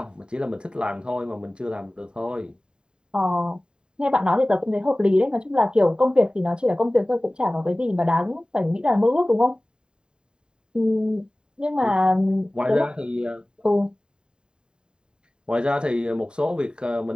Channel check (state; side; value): late; left; 0.049 ms